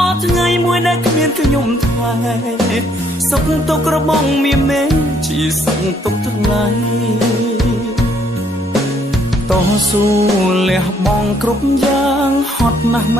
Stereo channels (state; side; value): normal; both; correlation 0.67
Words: ថ្ងៃមួយដែលគ្មានខ្ញុំថ្លៃសុខទុក្ខរបស់មានមេជាសុខទុក្ខថ្ងៃតស៊ូលះបង់គ្រប់យ៉ាងហត់ណាស់ម